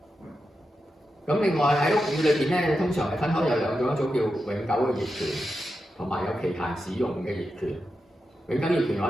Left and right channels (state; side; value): normal; both; correlation 0.89